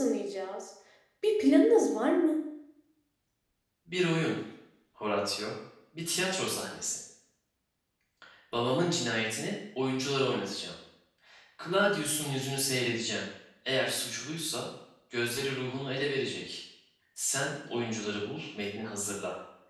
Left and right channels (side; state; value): both; identical; correlation 1.00